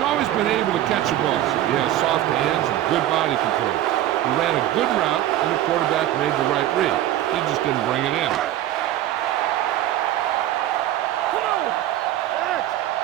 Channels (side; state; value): left; quieter; 13.1 dB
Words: been able to catch a ball. He has soft hands and good body control. He ran a good route, and the quarterback made the right read. He just didn't bring it in.